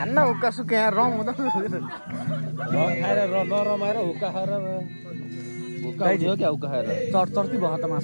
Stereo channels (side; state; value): both; inverted; correlation -1.00